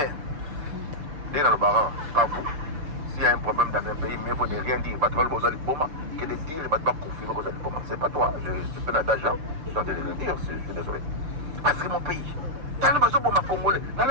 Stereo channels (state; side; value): late; left; 6.7 ms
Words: Dès dans le baran, pas vous. S'il y a un problème dans un pays, mais il faut ne rien dire. Que de dire, il ne va pas confirmer que vous allez pas. C'est pas toi. Je suis d'argent. Je suis en train de le dire. Je suis désolé. Parce que mon pays, dans le besoin pour ma Congolais, dans